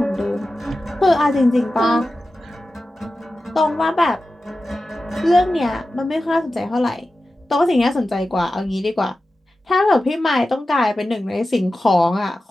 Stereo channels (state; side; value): normal; both; correlation 0.94